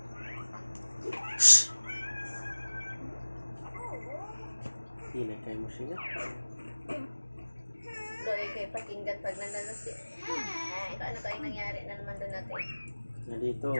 Hindi na kayo mo siya. Doy, kayo pakinggan pag nandun si... ano kayong nangyari na naman doon natin? Na dito,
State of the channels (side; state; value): both; inverted; correlation -1.00